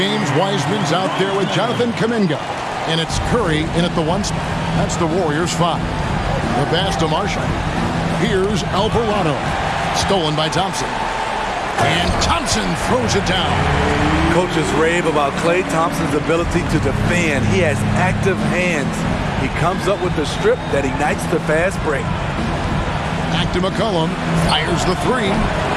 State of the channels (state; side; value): identical; both; correlation 1.00